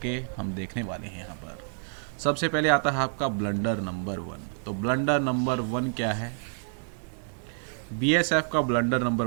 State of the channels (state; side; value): silent; left; digital silence